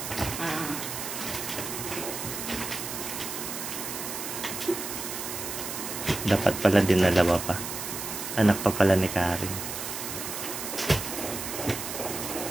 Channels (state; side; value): noise; right; hiss, 6 dB below the sound